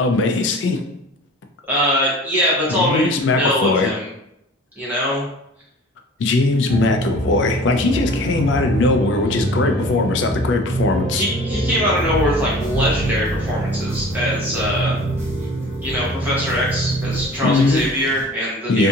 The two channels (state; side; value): normal; both; correlation 0.43